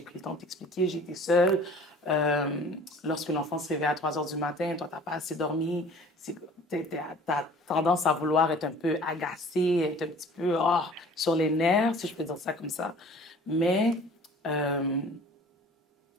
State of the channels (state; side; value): normal; both; correlation 0.48